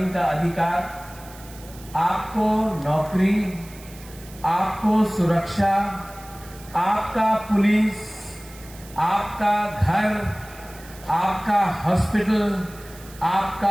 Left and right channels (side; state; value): right; noise; hiss, 20 dB below the sound